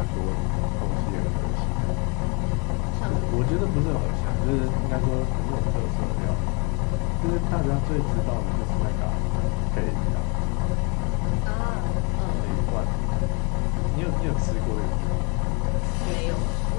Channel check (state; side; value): quieter; right; 33.1 dB